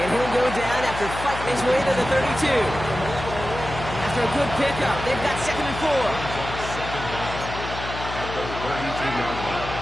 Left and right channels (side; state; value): left; noise; hum, 8 dB below the sound